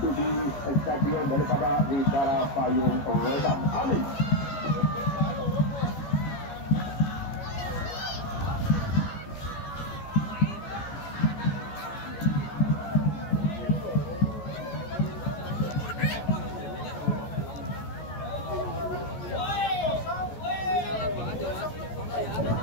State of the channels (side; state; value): right; late; 14 ms